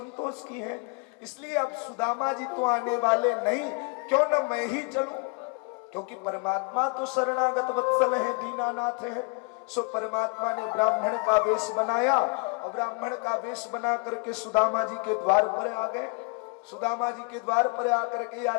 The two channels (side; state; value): right; quieter; 32.1 dB